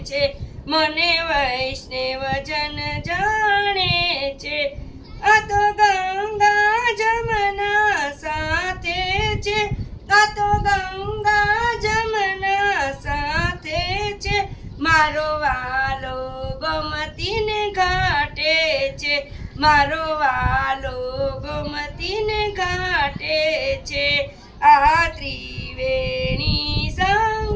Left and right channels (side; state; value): both; identical; correlation 1.00